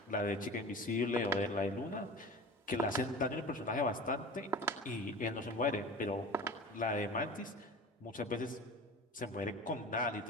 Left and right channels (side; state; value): both; normal; correlation 0.35